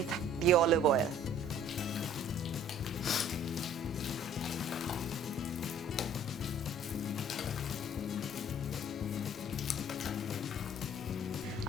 the olive oil.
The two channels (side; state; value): both; normal; correlation 0.53